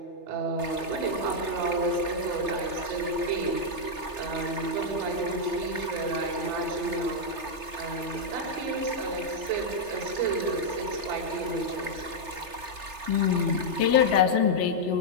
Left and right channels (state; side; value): late; left; 3.3 ms